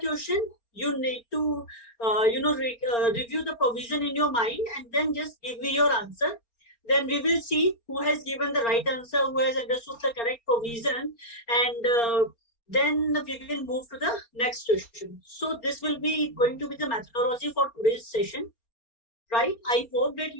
You need to, review the provision in your mind and then just give me your answer. Then we will see who has given the right answer, who has understood the correct provision, and then we will move to the next question. So this will be going to be the methodology for today's session, right? I hope that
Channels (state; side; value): late; right; 4.3 ms